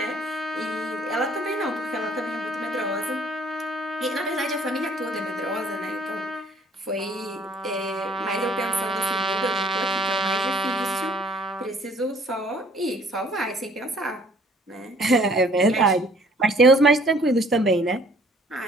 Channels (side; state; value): both; normal; correlation 0.58